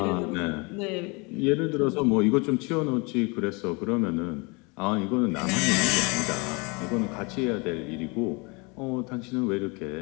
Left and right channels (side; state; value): right; quieter; 29.3 dB